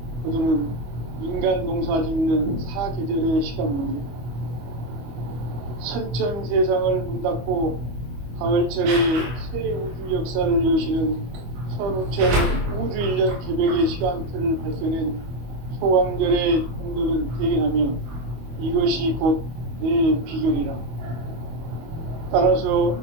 거두는 인간 농사 짓는 사계절의 시간입니다. 선천 세상을 문 닫고 가을철에 새 우주 역사를 여시는 선우천 우주 1년 개벽의 시간틀을 밝혀낸 소강절의 공덕은 대견하며 이것이 곧 내 비결이라. 따라서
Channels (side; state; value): left; late; 25 ms